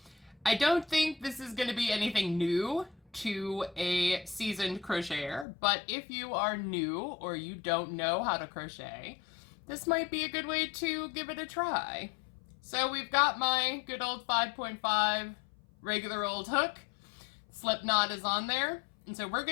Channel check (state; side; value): drops out; right; at 5.5 s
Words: I don't think this is going to be anything new to a seasoned crocheter, but if you are new or you don't know how to crochet, this might be a good way to give it a try. So we've got my good old 5.5 regular old hook. Slip knot is on there, and so we're